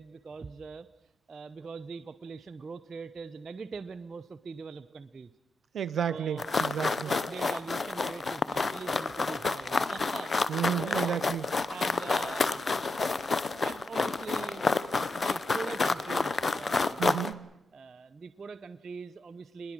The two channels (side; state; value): both; normal; correlation 0.85